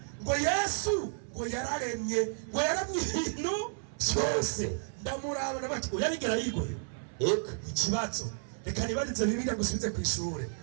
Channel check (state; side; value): silent; left; 56 dB below the other